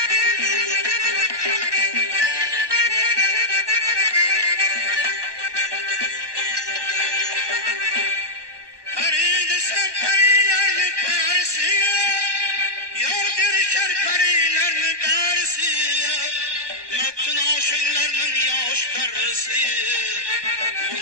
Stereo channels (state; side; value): late; left; 1.2 ms